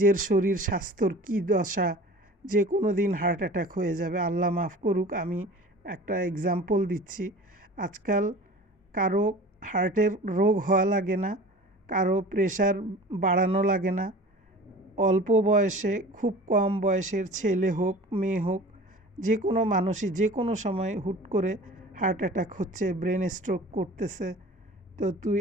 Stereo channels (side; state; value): both; normal; correlation 0.41